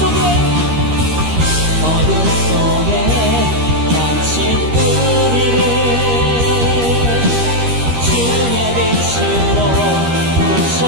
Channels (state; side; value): late; left; 13 ms